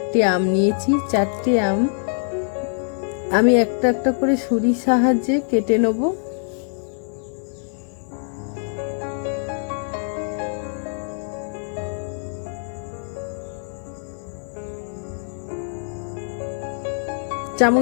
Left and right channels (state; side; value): silent; right; digital silence